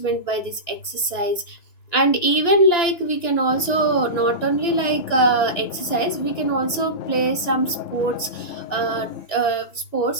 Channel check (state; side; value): late; right; 2.9 ms